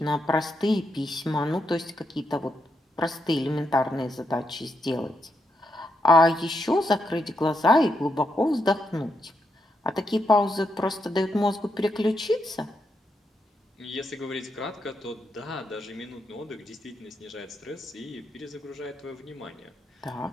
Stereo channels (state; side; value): normal; both; correlation 0.81